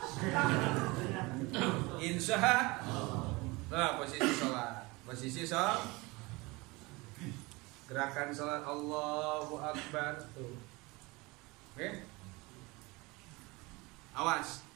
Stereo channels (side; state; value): left; quieter; 24.0 dB